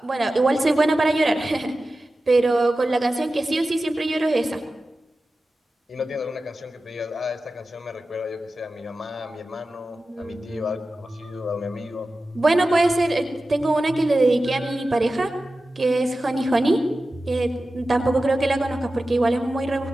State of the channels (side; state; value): both; normal; correlation 0.94